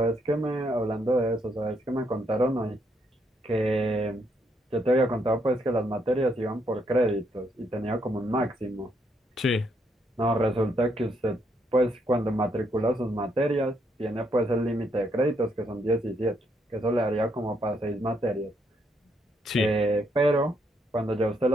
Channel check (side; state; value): both; normal; correlation 0.75